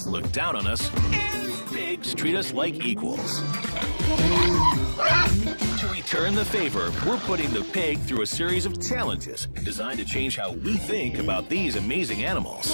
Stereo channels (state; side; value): inverted; both; correlation -1.00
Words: look down on us, and pigs treat us like equals." To return the favor, we're putting the pig through a series of challenges designed to change how we think about these amazing